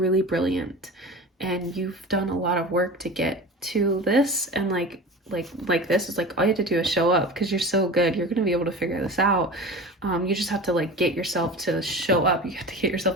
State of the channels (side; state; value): both; normal; correlation 0.33